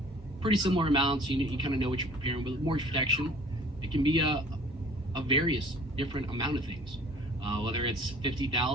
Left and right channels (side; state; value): both; normal; correlation 0.51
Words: pretty similar amounts. You kind of know what you're preparing. But with mortgage protection, it can be a various different amount of things, whether it's